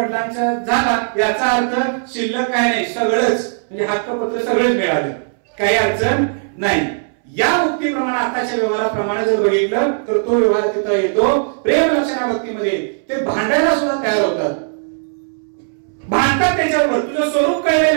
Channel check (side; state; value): left; silent; 68 dB below the other